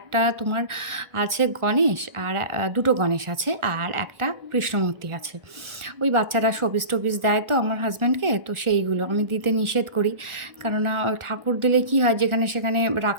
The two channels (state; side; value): late; left; 1.4 ms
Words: তোমার আছে গণেশ, আর দুটো গণেশ আছে, আর একটা কৃষ্ণ মূর্তি আছে। ওই বাচ্চারা শোপিস টোপিস দেয় তো আমার হাজব্যান্ডকে, তো সেইগুলো আমি দিতে নিষেধ করি। কেননা ঠাকুর দিলে কি হয়, যেখানে সেখানে